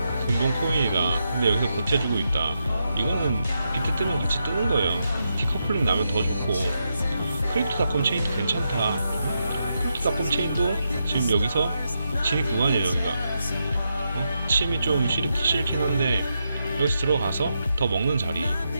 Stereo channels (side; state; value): both; inverted; correlation -0.84